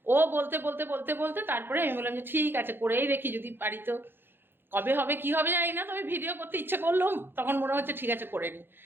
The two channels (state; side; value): late; left; 0.10 ms